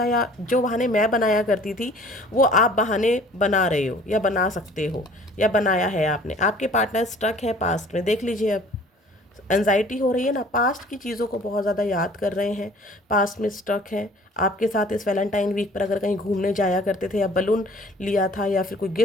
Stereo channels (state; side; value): normal; both; correlation 0.51